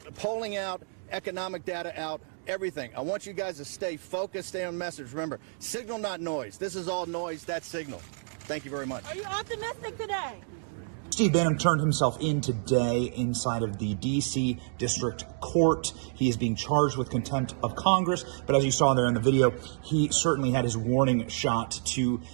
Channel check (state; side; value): silent; left; digital silence